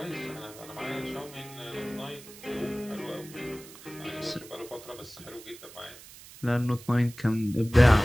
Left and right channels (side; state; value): right; noise; hiss, 18 dB below the sound